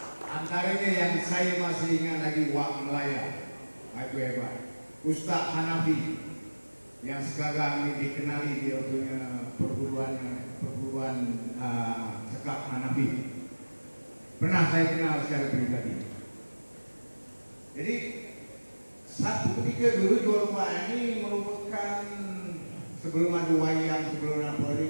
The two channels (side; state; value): both; inverted; correlation -1.00